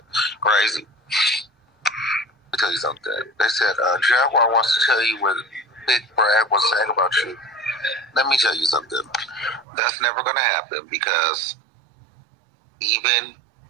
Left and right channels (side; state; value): left; drops out; at 9.7 s